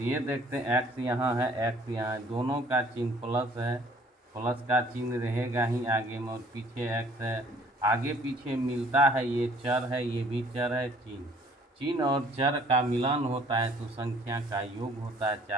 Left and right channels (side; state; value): both; normal; correlation 0.57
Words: देखते हैं x यहाँ है, x यहाँ है, दोनों का चिन्ह प्लस है, प्लस का चिन्ह रहेगा ही आगे में, और पीछे x है, आगे पीछे मिलता है, ये चर है, ये भी चर है। चिन्ह और चर का मिलान होता है तो संख्या का योग होता है।